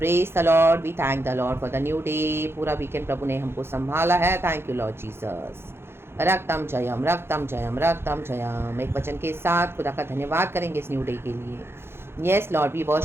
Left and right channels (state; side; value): late; left; 0.12 ms